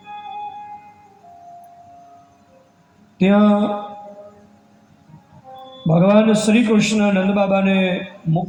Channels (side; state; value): both; identical; correlation 1.00